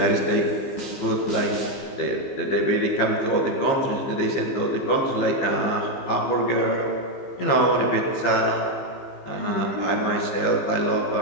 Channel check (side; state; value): right; late; 15 ms